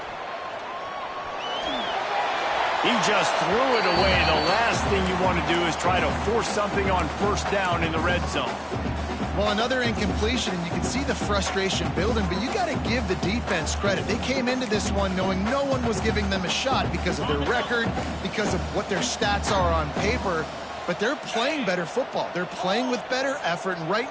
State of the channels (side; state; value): both; identical; correlation 1.00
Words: He just threw it away. The last thing you want to do is try to force something on first down in the red zone. Well, another incompletion, and you can see the frustration building, but you got to give the defense credit. They came into this one knowing no one was giving them a shot because of their record, because of what their stats are on paper, but they're playing better football. They're playing with better effort, and right